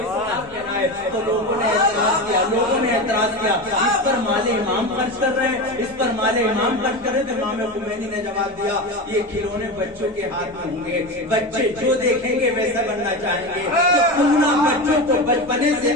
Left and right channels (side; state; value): both; normal; correlation 0.22